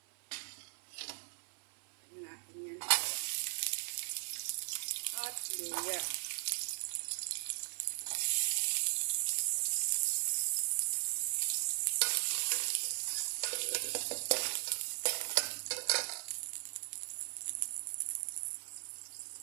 Tignan natin yan. At luya.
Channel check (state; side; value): silent; left; 52 dB below the other